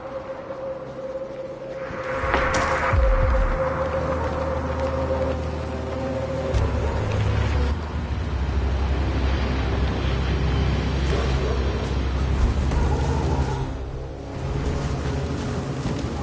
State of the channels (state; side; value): identical; both; correlation 1.00